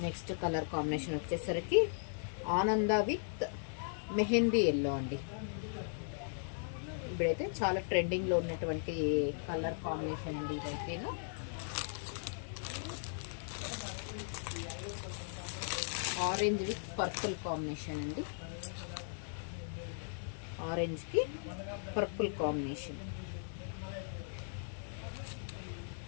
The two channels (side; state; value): right; silent; digital silence